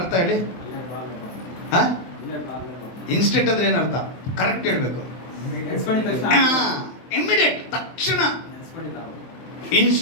ಹೇಳಿ? ಇನ್ಸ್ಟೆಂಟ್ ಅಂದ್ರೆ ಏನು ಅರ್ಥ? ಕರೆಕ್ಟ್ ಹೇಳ್ಬೇಕು. ಇಮಿಡಿಯೇಟ್, ತಕ್ಷಣ.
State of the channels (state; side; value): late; right; 23 ms